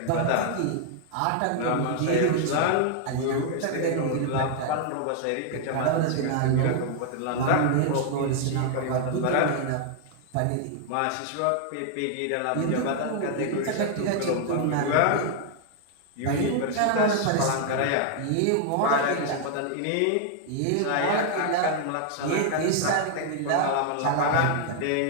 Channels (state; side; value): different; both; correlation 0.00